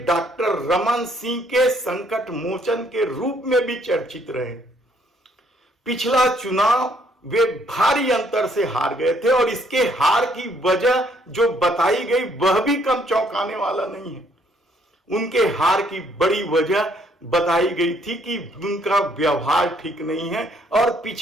डॉक्टर रमन सिंह के संकट मोचन के रूप में भी चर्चित रहे। पिछला चुनाव वे भारी अंतर से हार गए थे और इसके हार की वजह जो बताई गई वह भी कम चौंकाने वाला नहीं है। उनके हार की बड़ी वजह बताई गई थी कि उनका व्यवहार ठीक नहीं है और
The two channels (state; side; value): normal; both; correlation 0.66